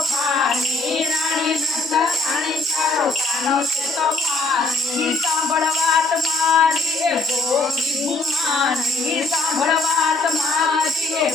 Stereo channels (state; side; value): quieter; right; 3.3 dB